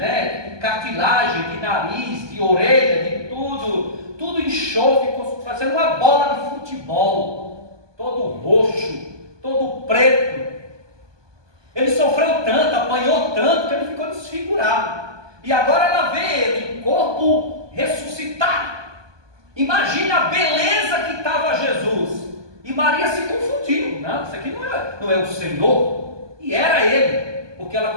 Cartilagem de nariz, de orelha, de tudo enxofre, fazendo uma bola de futebol, todo roxo, todo preto. Ele sofreu tanto, apanhou tanto, que ele ficou desfigurado. E agora ela vê ele em corpo ressuscitado. Imagina a beleza que estava Jesus. E Maria se confundiu. Não, isso aqui não é o Senhor. E era ele, porque ela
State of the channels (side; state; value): left; late; 1.2 ms